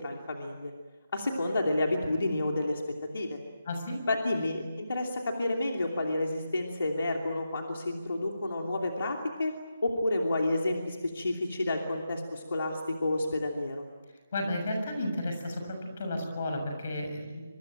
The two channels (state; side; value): inverted; both; correlation -0.87